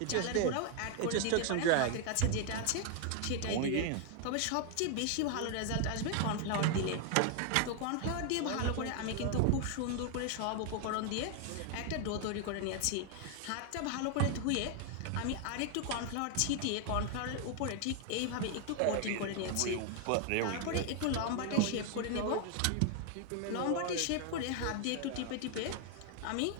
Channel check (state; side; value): different; both; correlation 0.00